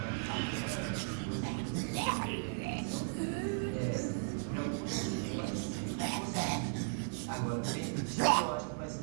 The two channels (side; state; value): left; silent; digital silence